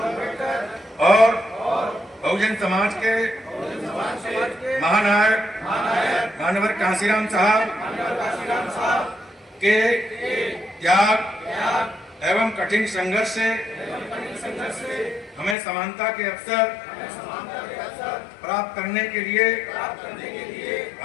और बहुजन समाज के महानायक मानवर कांसीराम साहब के त्याग एवं कठिन संघर्ष से हमें समानता के अवसर प्राप्त करने के लिए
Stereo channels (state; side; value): drops out; right; at 15.6 s